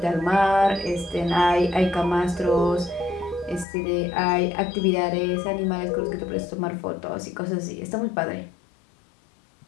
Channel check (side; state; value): right; drops out; at 3.7 s